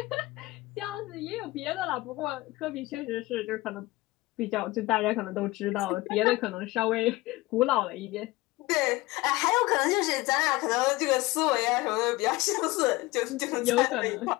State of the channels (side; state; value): right; quieter; 20.3 dB